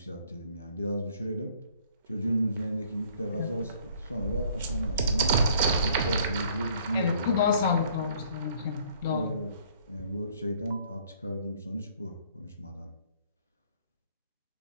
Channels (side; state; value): both; inverted; correlation -0.59